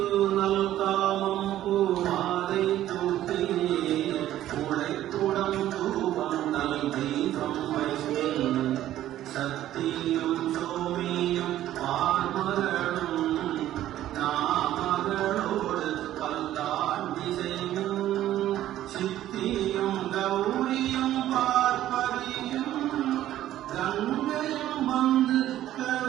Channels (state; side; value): quieter; left; 13.1 dB